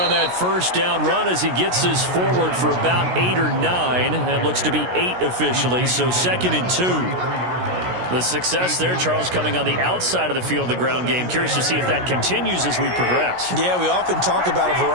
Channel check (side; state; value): left; late; 16 ms